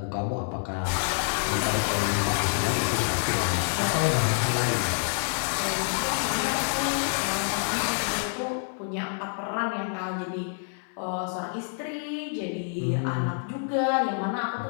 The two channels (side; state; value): right; silent; digital silence